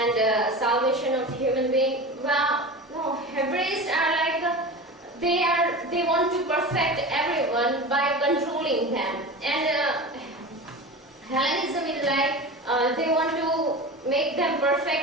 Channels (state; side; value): normal; both; correlation 0.30